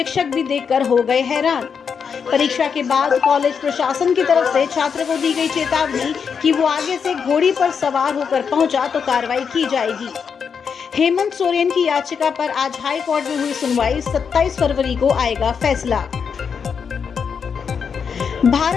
भी देखकर हो गए हैरान। परीक्षा के बाद कॉलेज प्रशासन की तरफ से छात्र को दी गई चेतावनी कि वो आगे से घोड़ी पर सवार होकर पहुंचा तो कार्रवाई की जाएगी। हेमंत सोरेन की याचिका पर आज हाई कोर्ट में हुई सुनवाई। 27 फरवरी को आएगा फैसला।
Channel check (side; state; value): right; quieter; 6.5 dB